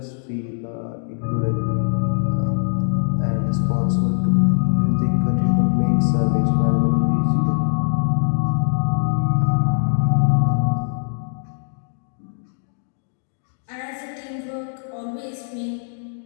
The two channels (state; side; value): silent; right; digital silence